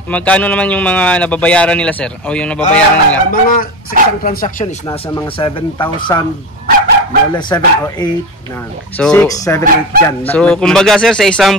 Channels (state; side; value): normal; both; correlation 0.24